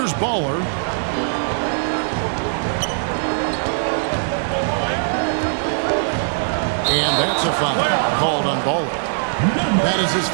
Baller. And that's a foul called on Baller. That is his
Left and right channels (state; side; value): silent; left; digital silence